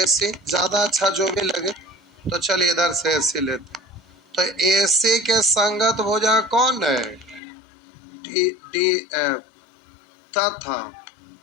सी, ज्यादा अच्छा जो भी लगे। तो चलिए इधर से ए सी लेते। तो ए सी के संगत भुजा कौन है? D D F. तथा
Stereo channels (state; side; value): drops out; right; at 7.4 s